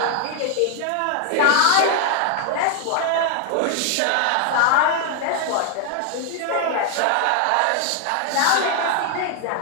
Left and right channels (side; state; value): both; different; correlation 0.00